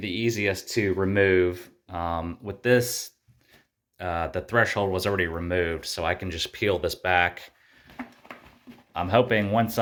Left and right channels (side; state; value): both; identical; correlation 1.00